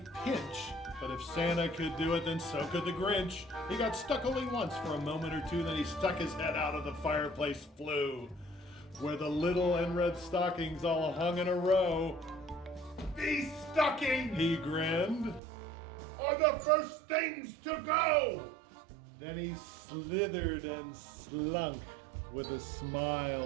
pinch. But if Santa could do it, then so could the Grinch. He got stuck only once for a moment or two, then he stuck his head out of the fireplace flue, where the little NRED stockings all hung in a row. These stockings, He grinned. are the first things to go. Then he slithered and slunk with a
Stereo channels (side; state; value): left; drops out; at 15.4 s